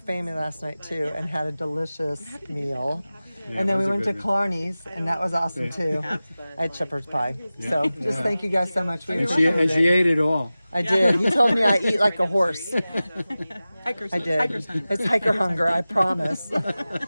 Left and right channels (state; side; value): inverted; both; correlation -0.96